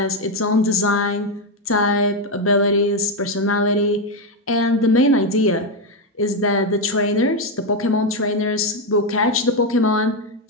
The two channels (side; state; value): both; normal; correlation 0.06